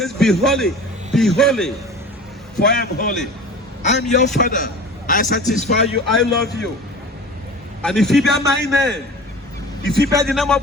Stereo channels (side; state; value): both; normal; correlation 0.38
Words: be holy, for I am holy. I am your Father. I satisfy you, I love you. And if you bear my name, if you bear the name